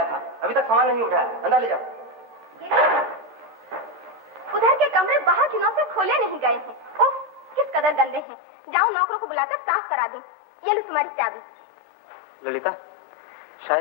था? अभी तक सामान नहीं उठाया, अंदर ले जाओ। उधर के कमरे बाहर की नौ से खोले नहीं गए हैं। उफ, किस कदर गंदे हैं। जाओ नौकरों को बुलाकर साफ करा दो। ये लो तुम्हारी चाबी। ललिता,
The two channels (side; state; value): right; drops out; at 8.2 s